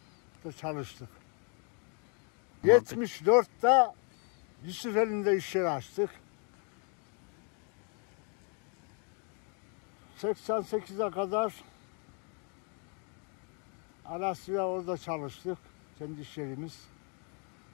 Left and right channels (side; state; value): right; quieter; 38.9 dB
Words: da çalıştık. 74'te Yusufeli'nde iş yeri açtık. 88'e kadar Alasya orada çalıştık. Kendi iş yerimiz.